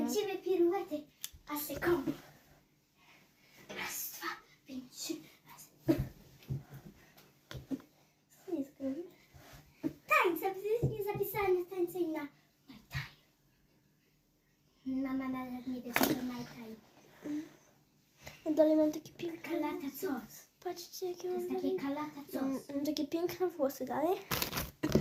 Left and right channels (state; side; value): identical; both; correlation 1.00